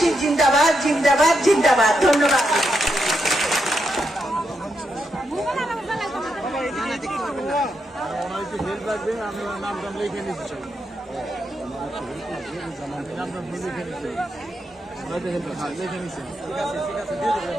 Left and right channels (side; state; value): both; normal; correlation 0.82